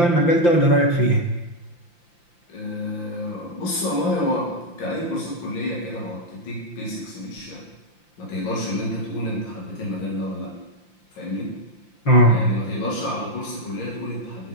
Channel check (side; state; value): right; late; 5.8 ms